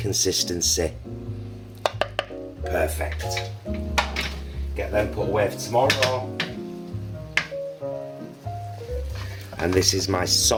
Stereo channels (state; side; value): identical; both; correlation 1.00